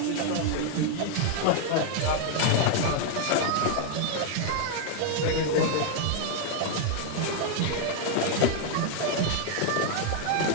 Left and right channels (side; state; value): both; different; correlation 0.00